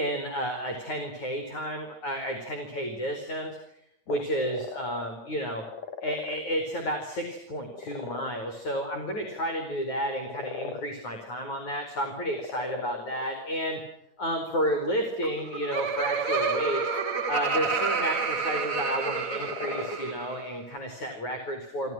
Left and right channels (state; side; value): late; right; 8.8 ms